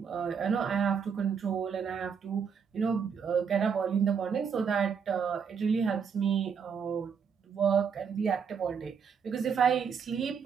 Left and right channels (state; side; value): quieter; left; 6.6 dB